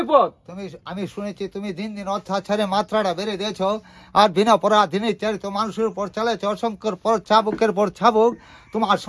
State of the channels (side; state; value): both; identical; correlation 1.00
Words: আমি শুনেছি তুমি দিন দিন অত্যাচারের মাত্রাটা বেড়ে দিয়েছ, আর বিনা পরাধীনে চারিত মানুষের উপর চালাচ্ছে অসংখ্যর পর চাবুকের পর চাবুক। তোমার